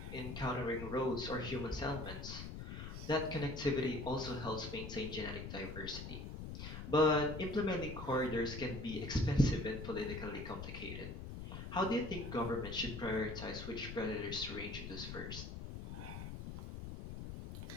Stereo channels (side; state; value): left; noise; rumble, 8 dB below the sound